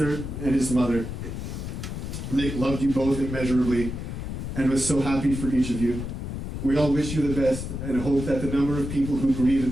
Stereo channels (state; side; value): noise; left; rumble, 6 dB below the sound